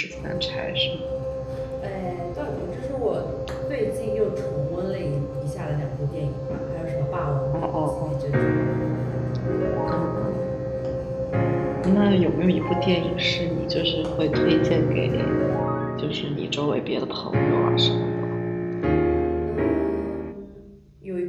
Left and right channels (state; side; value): identical; both; correlation 1.00